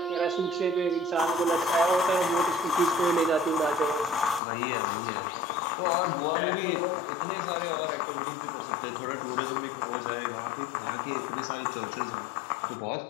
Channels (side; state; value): right; drops out; at 4.4 s